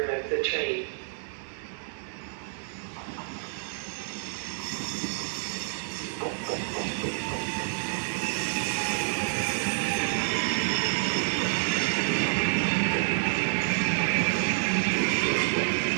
of the train.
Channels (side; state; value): left; silent; 59 dB below the other